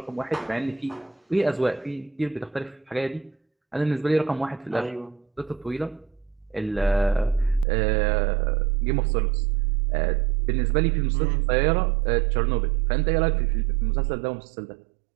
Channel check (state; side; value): drops out; left; at 7.7 s